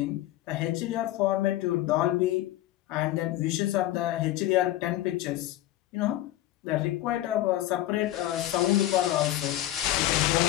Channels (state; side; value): quieter; right; 14.7 dB